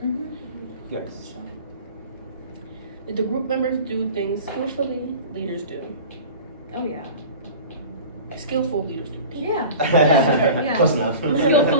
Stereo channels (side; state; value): both; inverted; correlation -0.39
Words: Yes. Did the group members do things skillfully? Leaders do. Oh yeah. Skillful leaders do. Yeah. Yeah. Close enough.